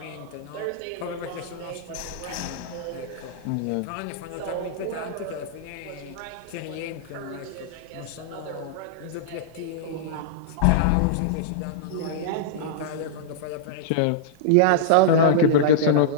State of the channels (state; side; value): different; both; correlation -0.02